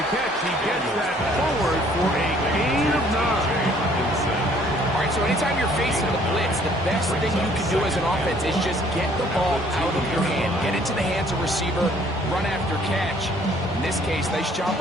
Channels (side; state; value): both; normal; correlation 0.60